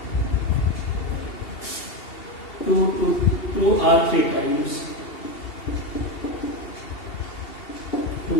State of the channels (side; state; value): right; late; 2.7 ms